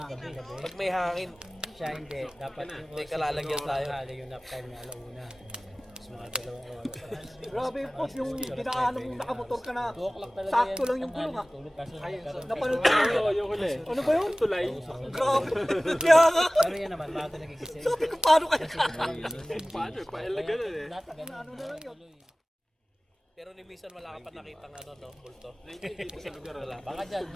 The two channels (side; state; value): both; normal; correlation 0.98